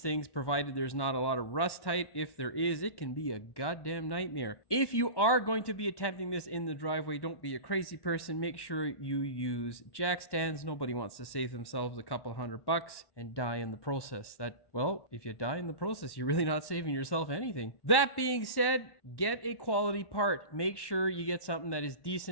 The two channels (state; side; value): late; right; 1.1 ms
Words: things, provided there's not a lot of rust tight. If there is, it can be a goddamn nightmare. If you are going to be attempting this in the driveway, don't be a crazy person. Make sure you use jack stands. Nobody wants to save themselves a couple $100 and die in the process. Well, if you die in the process, you're really not saving yourself anything. That being said, get a quality part. Make sure you get something that is